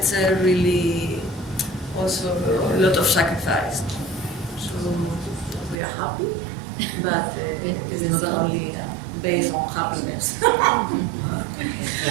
really also a lot of sacrifice. So we are happy, but it is not only based on happiness.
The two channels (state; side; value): drops out; left; at 5.8 s